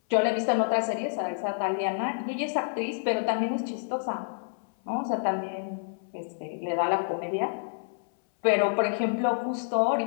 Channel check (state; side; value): silent; right; 59 dB below the other